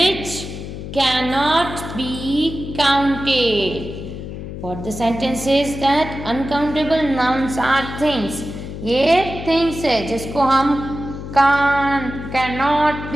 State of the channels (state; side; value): noise; left; hum, 9 dB below the sound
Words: cannot be counted. What the sentence says that uncountable nouns are things. ये things है जिसको हम cannot